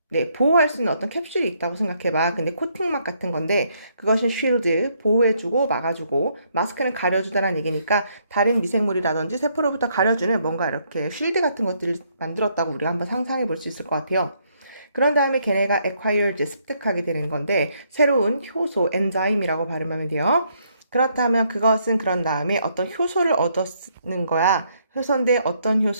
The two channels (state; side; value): inverted; both; correlation -0.72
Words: 어떤 캡슐이 있다고 생각해봐. 근데 코팅막 같은 건데 그것은 쉴드, 보호해주고 막아주고, 마스크는 가려주다라는 얘기니까 다른 미생물이라든지 세포로부터 가려주는 뭔가 이렇게 쉴드 같은 것들을 만들었다고 우리가 한번 상상해 볼 수 있을 것 같아요. 그런 다음에 걔네가 acquired, 습득하게 되는 건데 새로운 효소, 엔자임이라고 발음하면 돼요. 그렇다면 그것은 그런 다음에 어떤 효소를 얻었는 거야. 효소인데 어떤